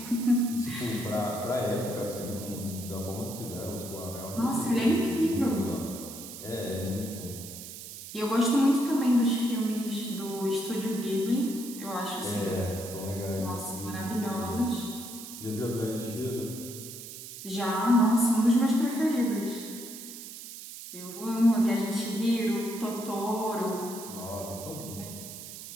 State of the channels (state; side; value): noise; right; hiss, 12 dB below the sound